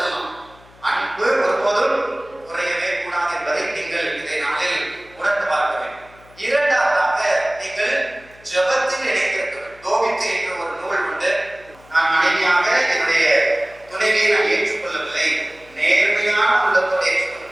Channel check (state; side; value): noise; left; hum, 26 dB below the sound